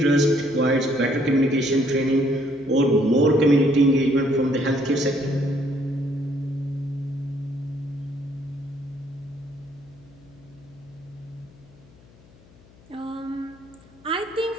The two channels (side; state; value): left; noise; hum, 26 dB below the sound